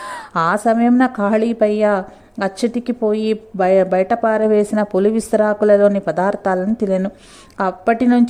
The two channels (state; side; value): identical; both; correlation 1.00